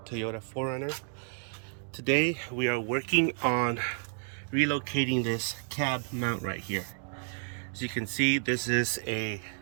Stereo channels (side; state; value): left; silent; 57 dB below the other